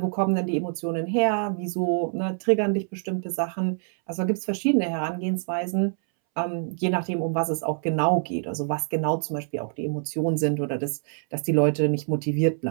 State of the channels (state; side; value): silent; left; 61 dB below the other